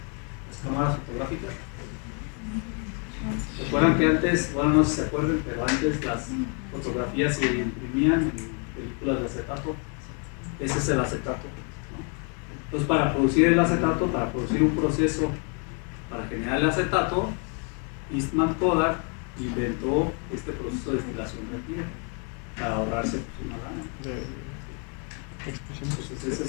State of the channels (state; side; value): quieter; right; 38.3 dB